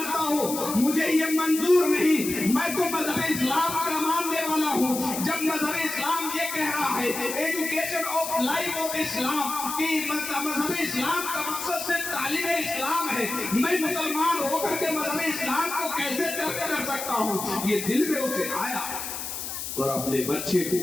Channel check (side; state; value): left; noise; hiss, 6 dB below the sound